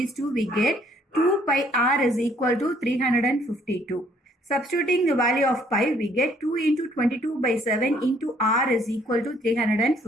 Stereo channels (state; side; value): normal; both; correlation 0.63